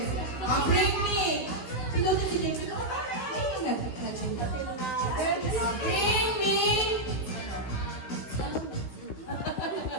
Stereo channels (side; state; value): right; late; 16 ms